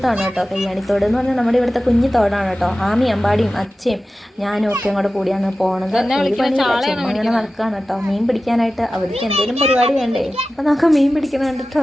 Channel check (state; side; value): normal; both; correlation 0.95